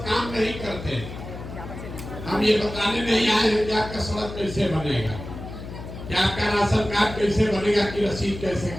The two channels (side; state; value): left; noise; hum, 11 dB below the sound